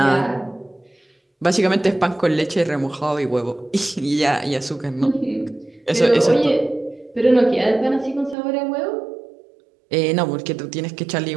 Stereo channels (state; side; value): drops out; left; at 8.3 s